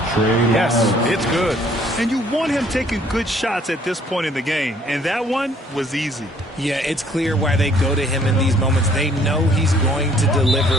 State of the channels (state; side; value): normal; both; correlation 0.61